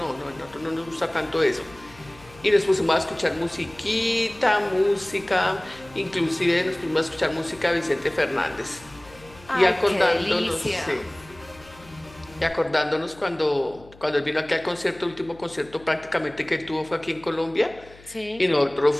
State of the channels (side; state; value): left; noise; hum, 23 dB below the sound